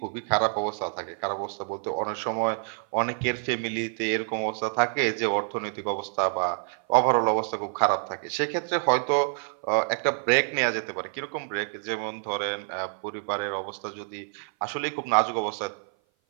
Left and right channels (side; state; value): left; silent; 56 dB below the other